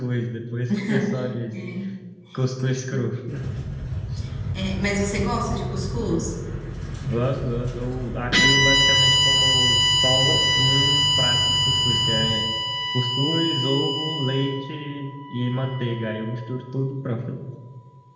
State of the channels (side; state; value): both; identical; correlation 1.00